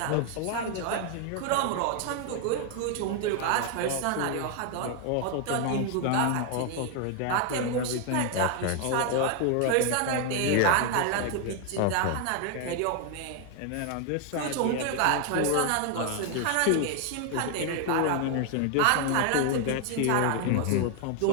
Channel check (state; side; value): different; both; correlation 0.00